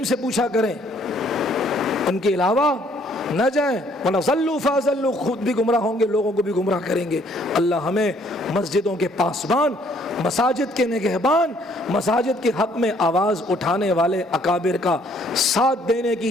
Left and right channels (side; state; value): both; normal; correlation 0.63